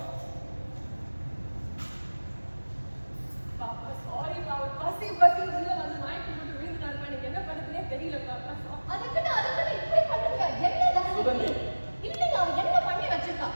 பாப்பா சாரி பாப்பா பசி உள்ள வந்து மயக்கம் போட்டு விழுந்துட்டாருப்பா எனக்கு என்ன பண்ணுறதுனே தெரியல பாப்பா அதுக்குன்னு இப்படி பண்ணுங்க என்ன சுகந்தி. இல்லைங்க அவன் என்ன பண்ணி வச்சிருக்கா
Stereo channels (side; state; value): both; inverted; correlation -1.00